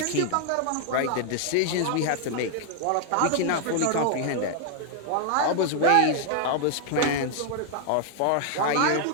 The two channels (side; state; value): both; different; correlation 0.00